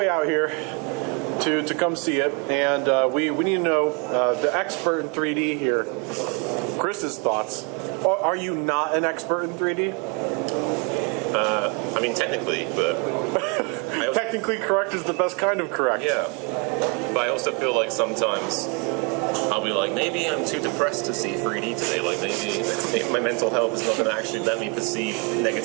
out here to come see it, and we need to know the expert in 3D here, Chris's thoughts. Are you not an expert in 3D? I mean, technically, but... Technically correct is the best kind of correct. Yeah. But I also feel like sometimes I'll be like, maybe I'm too depressed to see 3D today. Like, maybe my mental health is not going to actually let me perceive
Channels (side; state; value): left; quieter; 32.5 dB